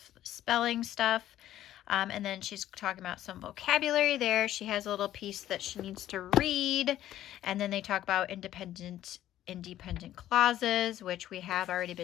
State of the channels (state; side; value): quieter; right; 12.8 dB